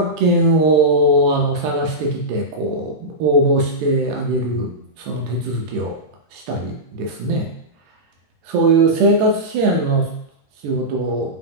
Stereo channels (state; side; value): late; left; 14 ms